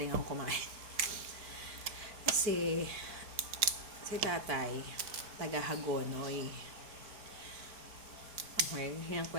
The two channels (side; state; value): left; late; 4.6 ms